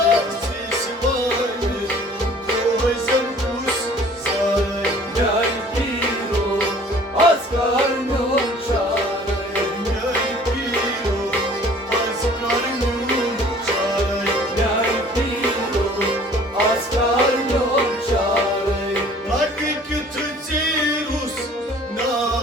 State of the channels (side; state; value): both; normal; correlation 0.51